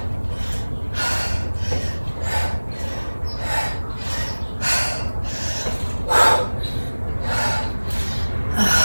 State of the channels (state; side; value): inverted; both; correlation -1.00